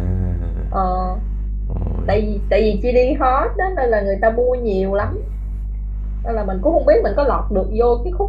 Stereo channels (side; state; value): both; identical; correlation 1.00